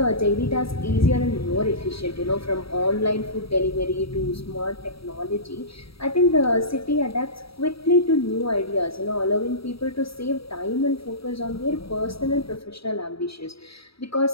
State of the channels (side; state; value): right; late; 0.76 ms